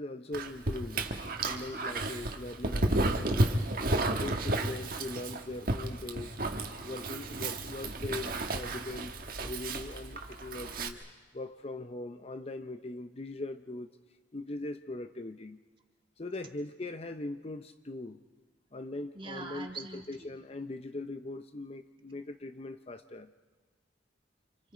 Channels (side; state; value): both; normal; correlation 0.57